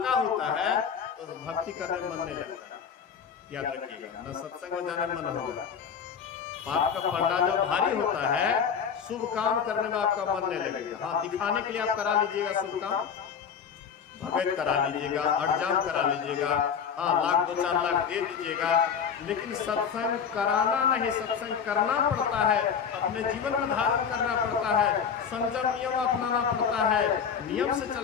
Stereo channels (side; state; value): right; quieter; 7.0 dB